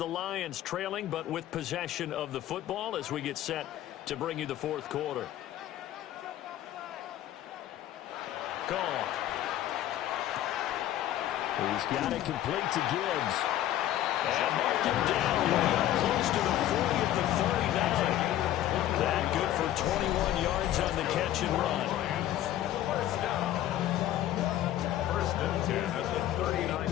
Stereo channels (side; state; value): right; quieter; 12.9 dB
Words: Lions trailing, but with possession of the football as we get set to bring you the 4th quarter. Gone. He's got it complete to Gibbs. And marked him down way up close to the 40 at the 39. That good for 21 yards on the catch and run. 1st down. 1st and 10 at the